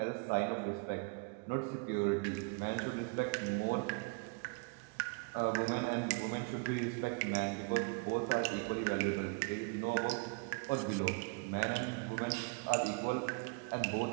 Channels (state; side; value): quieter; left; 33.9 dB